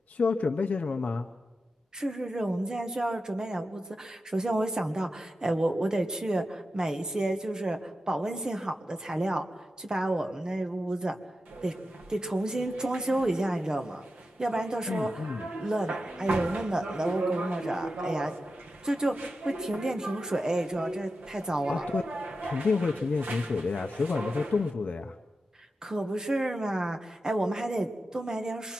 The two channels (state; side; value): normal; both; correlation 0.90